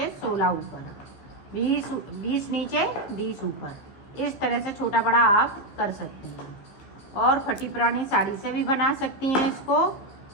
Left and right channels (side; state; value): right; late; 15 ms